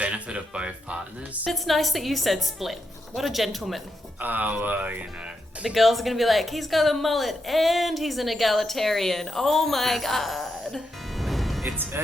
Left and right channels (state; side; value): normal; both; correlation 0.83